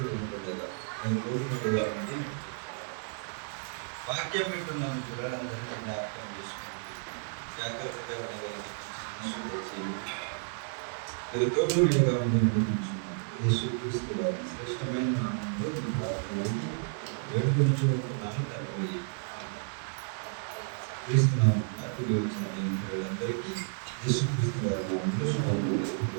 ఉంటుండగా నేను తోడుగా ఉండి వాక్యం వింటున్నాను కూడా అందరినీ జ్ఞాపకం చేసుకున్నాను. జాగ్రత్తగా మీరు తోడుగా ఉండి నడిపించున్నాను. యేసుక్రీస్తు వారి శ్రేష్టమైన నామంలో ఈ ప్రార్థనని వేడుకొంచుకుంటున్నాను తండ్రి. క్రీస్తునామమున కూడి వచ్చిన అందరికీ యేసుక్రీస్తు వారి నామంలో శుభములు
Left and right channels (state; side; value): silent; left; 57 dB below the other